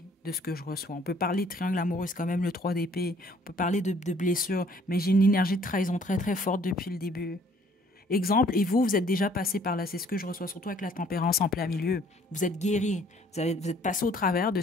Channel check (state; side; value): normal; both; correlation 0.59